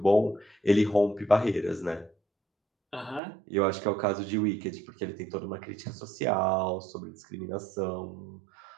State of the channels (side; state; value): left; drops out; at 3.2 s